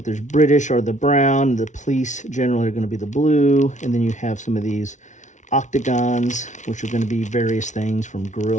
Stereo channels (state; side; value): late; right; 0.36 ms